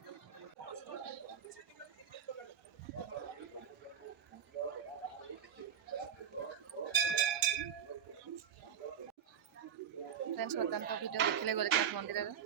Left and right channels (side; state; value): left; quieter; 8.1 dB